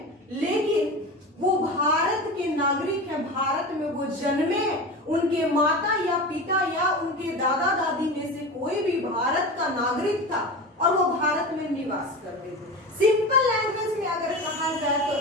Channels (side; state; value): both; normal; correlation 0.28